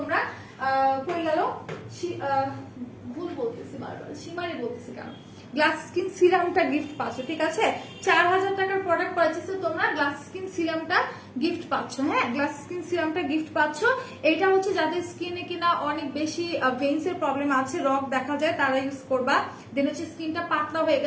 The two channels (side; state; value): both; identical; correlation 1.00